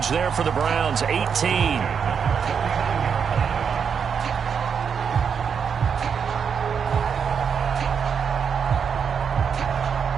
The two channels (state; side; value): quieter; left; 6.8 dB